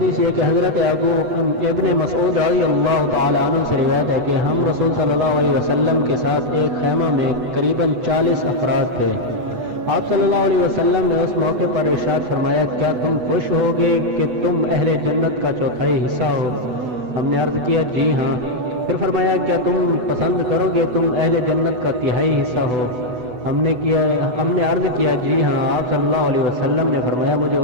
یہ کہ حضرت ابن مسعود رضی اللہ تعالیٰ عنہ سے روایت ہے کہ ہم رسول صلی اللہ علیہ وسلم کے ساتھ ایک خیمہ میں قریباً 40 افراد تھے۔ آپ صلی اللہ علیہ وسلم نے اس موقع پر ارشاد فرمایا، کیا تم خوش ہوگے کہ تم اہل جنت کا چوتھائی حصہ ہو؟ ہم نے عرض کیا جی ہاں۔ پھر فرمایا، کیا تم پسند کرو گے تم اہل جنت کا تہائی حصہ ہو؟ ہم نے عرض کیا جی ہاں۔ آپ صلی اللہ علیہ وسلم نے فرمایا، مجھے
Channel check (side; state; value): left; late; 8.1 ms